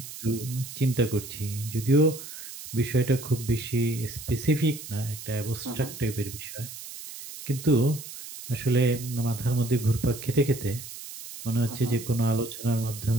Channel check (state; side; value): noise; right; hiss, 12 dB below the sound